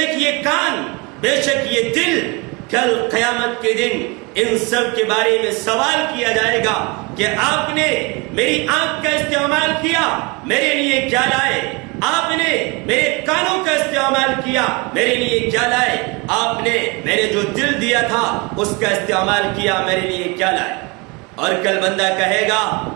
یہ کان، بے شک یہ دل کل قیامت کے دن ان سب کے بارے میں سوال کیا جائے گا کہ آپ نے میری آنکھ کا استعمال کیا، میرے لیے کیا لائے؟ آپ نے میرے کانوں کا استعمال کیا، میرے لیے کیا لائے؟ آپ نے میرے جو دل دیا تھا اس کا استعمال کیا، میرے لیے کیا لائے؟ اور کل بندہ کہے گا،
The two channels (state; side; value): quieter; left; 28.2 dB